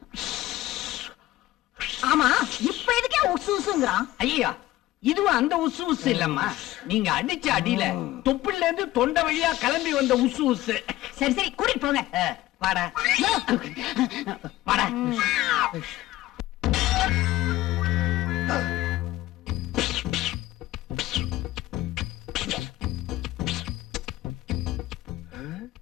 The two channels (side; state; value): right; quieter; 16.3 dB